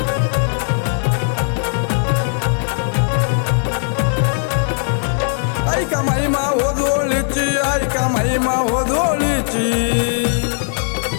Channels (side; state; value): right; silent; digital silence